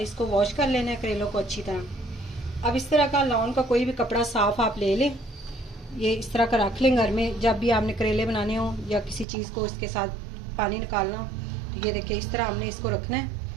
इसको वॉश कर लेना है करेलों को अच्छी तरह। अब इस तरह का लॉन का कोई भी कपड़ा साफ आप ले लें, ये इस तरह का रख लें घर में। जब भी आपने करेले बनाने हो या किसी चीज़ को इसके साथ पानी निकालना हो, तो ये देखिए इस तरह हमने इसको रखना है।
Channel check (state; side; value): drops out; left; at 9.2 s